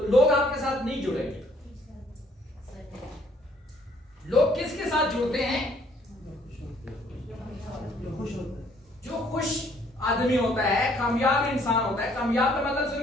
लोग आपके साथ नहीं जुड़ेंगे। लोग किसके साथ जुड़ते हैं? जो खुश आदमी होता है, कामयाब इंसान होता है। कामयाब का मतलब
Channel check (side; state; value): both; normal; correlation 0.63